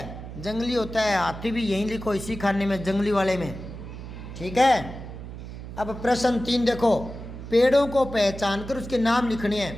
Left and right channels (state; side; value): noise; right; hum, 11 dB below the sound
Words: जंगली होता है, हाथी भी यहीं लिखो, इसी खाने में, जंगली वाले में, ठीक है। अब प्रश्न 3 देखो, पेड़ों को पहचान कर उसके नाम लिखने